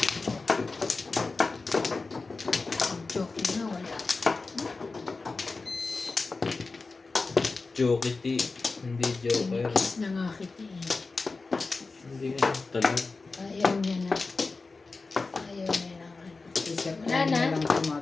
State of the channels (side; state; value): right; quieter; 3.9 dB